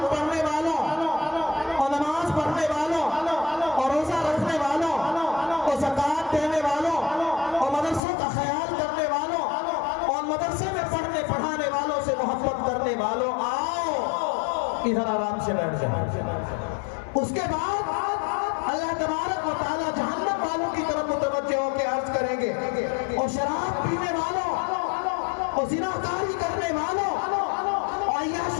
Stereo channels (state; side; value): drops out; right; at 8.0 s